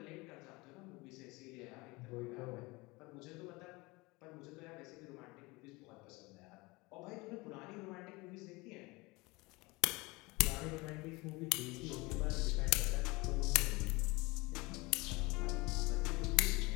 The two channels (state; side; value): quieter; right; 23.9 dB